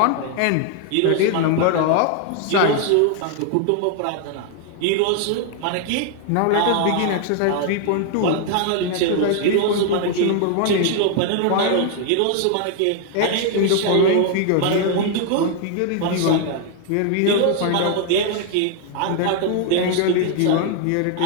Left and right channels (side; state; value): both; different; correlation 0.00